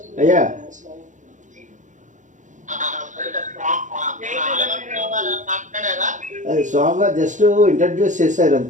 అయ్యా స్వామివారు జస్ట్ ఇంట్రడ్యూస్ చేశారు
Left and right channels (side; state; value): left; late; 0.36 ms